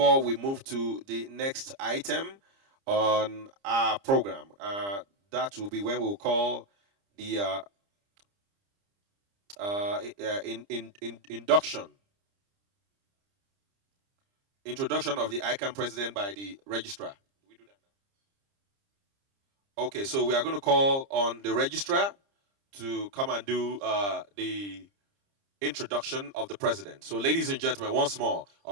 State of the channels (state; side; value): late; left; 30 ms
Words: we move to the next item on our program. That will be when we'll call the introduction of the ICAN president by the registrar. Do we do that now? Okay, so we are going to call on the registrar to come and do the introduction of the president. So ladies and gentlemen, once more,